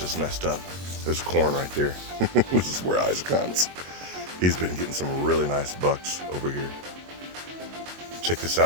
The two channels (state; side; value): late; left; 22 ms